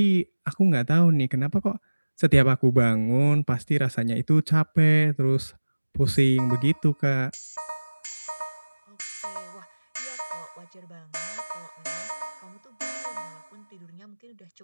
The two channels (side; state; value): both; inverted; correlation -1.00